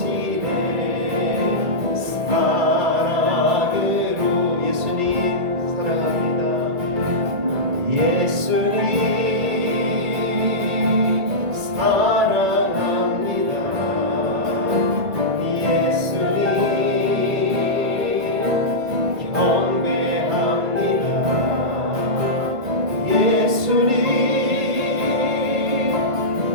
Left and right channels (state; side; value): late; left; 1.5 ms